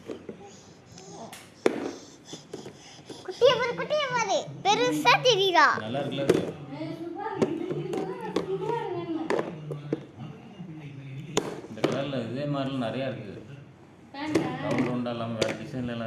பெருசா தெரியுதா? நல்லா இருக்குல்ல அது. இந்த கலரில் இதே மாதிரிலாம் நிறையா இருக்குது. ரவுண்ட் ரவுண்டாக இல்லாமல் வேறு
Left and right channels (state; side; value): identical; both; correlation 1.00